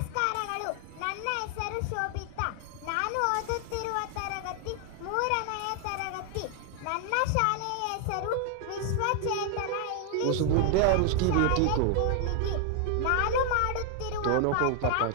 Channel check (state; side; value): different; both; correlation 0.00